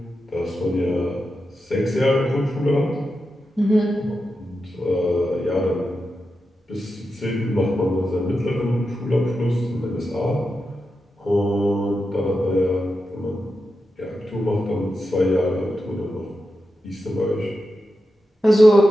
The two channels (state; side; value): normal; both; correlation 0.89